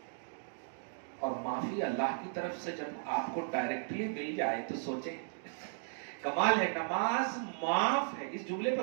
اور معافی اللہ کی طرف سے جب آپ کو ڈائریکٹلی مل جائے تو سوچیں, کمال ہے. نماز معاف ہے. اس جملے پہ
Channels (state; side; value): silent; left; digital silence